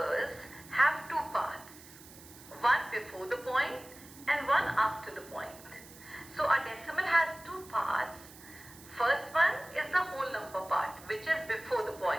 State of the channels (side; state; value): right; noise; hiss, 19 dB below the sound